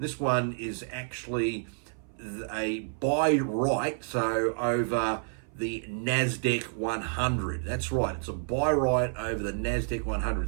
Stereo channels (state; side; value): silent; left; 58 dB below the other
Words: one is actually a buy right, so over the NASDAQ 100. That's right, it's a buy right over the NASDAQ